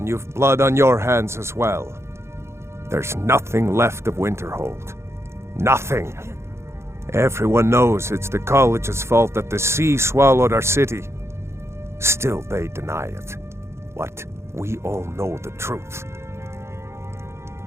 you've blood on your hands as well. There's nothing left of Winterhold. Nothing. Everyone knows it's the college's fault that the sea swallowed our city. Still, they deny it. What? We all know the truth.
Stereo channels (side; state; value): left; late; 0.13 ms